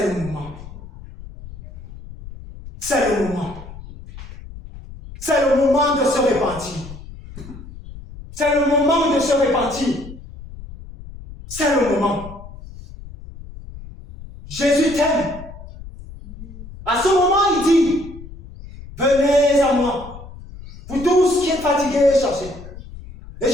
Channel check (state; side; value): noise; left; rumble, 15 dB below the sound